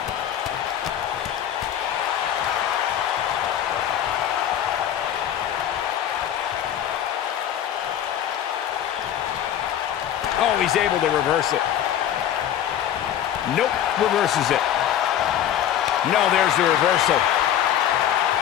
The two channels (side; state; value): right; quieter; 10.6 dB